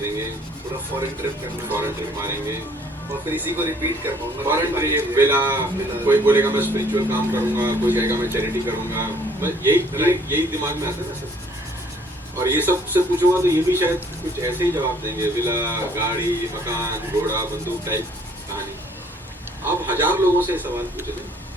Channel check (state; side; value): normal; both; correlation 0.59